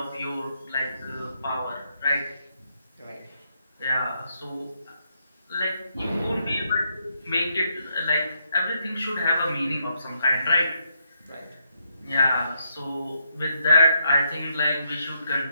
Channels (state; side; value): inverted; both; correlation -0.78